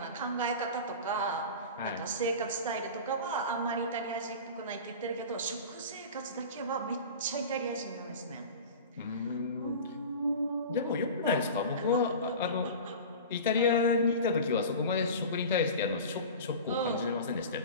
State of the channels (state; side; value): inverted; both; correlation -0.33